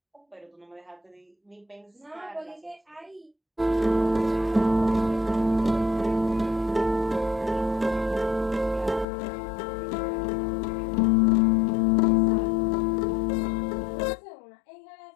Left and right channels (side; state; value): right; drops out; at 9.1 s